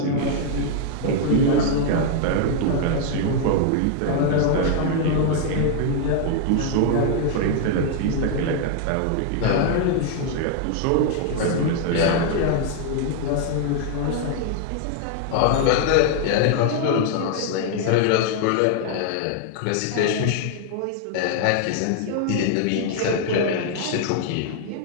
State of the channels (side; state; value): both; different; correlation 0.00